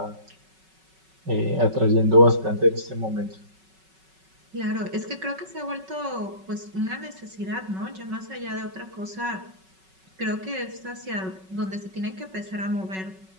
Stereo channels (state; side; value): late; left; 5.3 ms